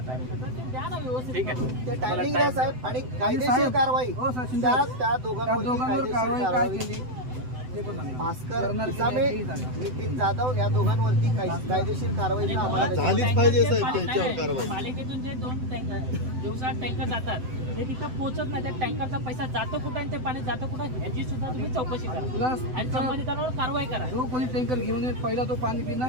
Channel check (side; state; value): left; late; 7.9 ms